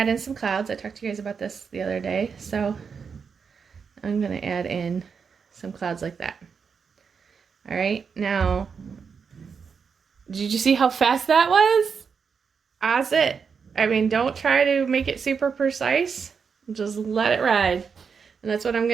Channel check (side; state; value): left; quieter; 6.0 dB